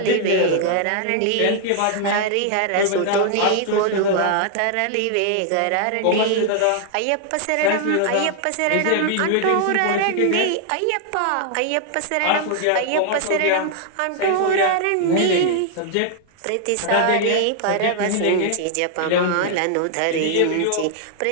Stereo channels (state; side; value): different; both; correlation 0.00